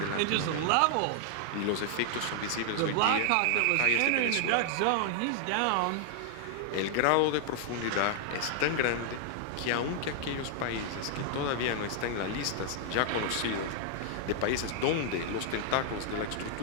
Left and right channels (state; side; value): different; both; correlation 0.00